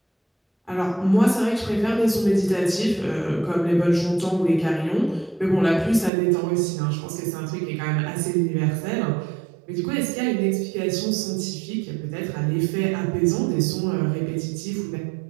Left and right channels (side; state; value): left; drops out; at 6.1 s